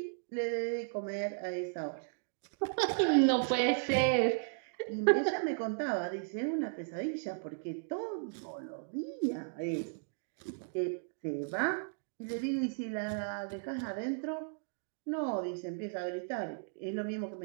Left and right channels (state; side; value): silent; left; digital silence